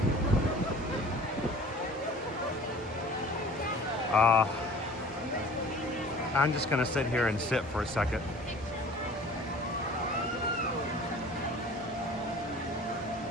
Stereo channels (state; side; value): normal; both; correlation 0.45